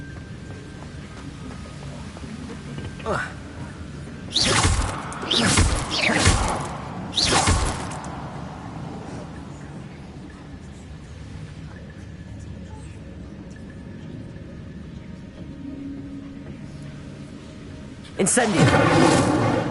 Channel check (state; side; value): identical; both; correlation 1.00